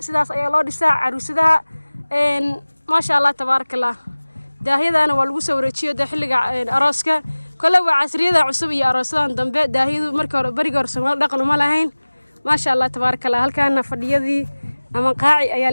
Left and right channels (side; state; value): both; inverted; correlation -1.00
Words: ayaa loo dhisaa caruusadaha ما شاء الله تبارك الله daahiyadana waa lagu soo wareejiyo xilliga arooska kale waa casriyada cusub iyo aroosadan dambe daahiyadu markii hore bariga hore Soomaali dhaqan uma lahayn ما شاء الله تبارك الله halkaana fadhiyadii ama qaaci ayaa